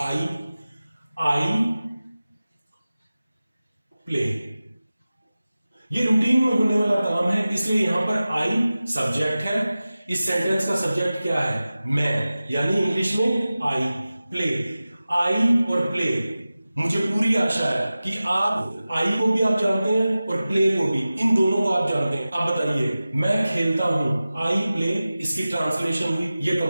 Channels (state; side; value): inverted; both; correlation -0.96